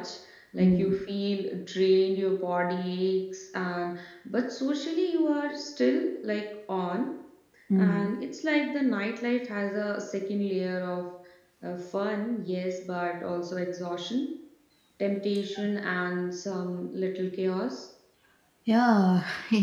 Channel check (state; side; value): identical; both; correlation 1.00